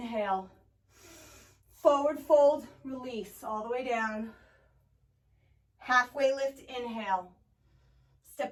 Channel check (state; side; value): identical; both; correlation 1.00